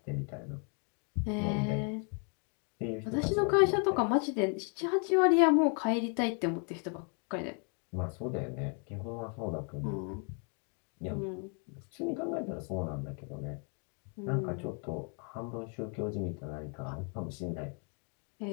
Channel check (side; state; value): right; quieter; 39.9 dB